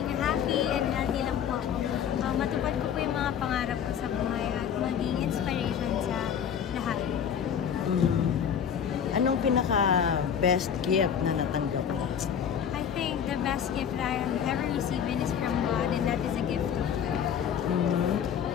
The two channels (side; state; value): right; quieter; 8.2 dB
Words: happy and healthy lang po ako. Matupad ko po yung mga pangarap ko sa buhay at maging inspiration sa lahat. Anong pinaka-best gift na natanggap mo? I think the best gift that I have ever received is from God, and that is a gift of God.